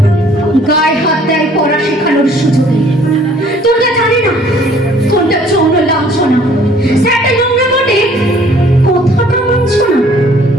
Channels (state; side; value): normal; both; correlation 0.57